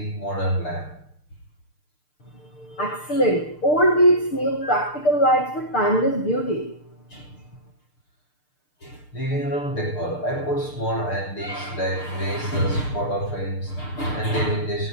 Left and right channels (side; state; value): right; late; 6.7 ms